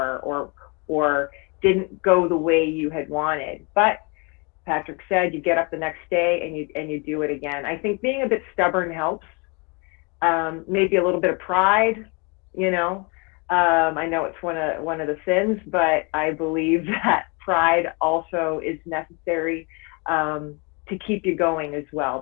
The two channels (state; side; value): quieter; right; 31.6 dB